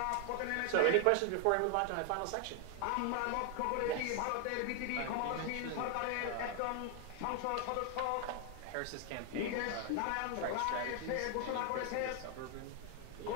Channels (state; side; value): different; both; correlation 0.00